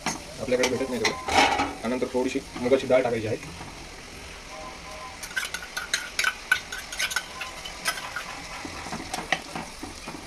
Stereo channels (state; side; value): identical; both; correlation 1.00